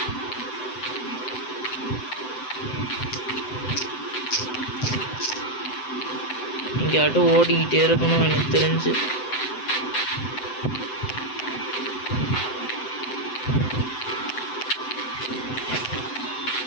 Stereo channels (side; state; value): right; late; 7.8 ms